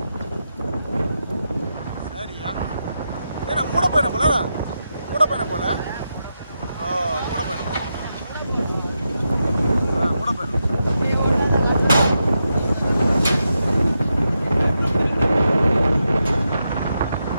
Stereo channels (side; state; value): both; inverted; correlation -0.86